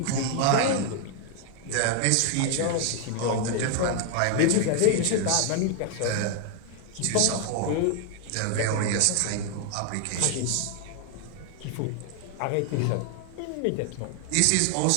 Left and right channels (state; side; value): different; both; correlation 0.00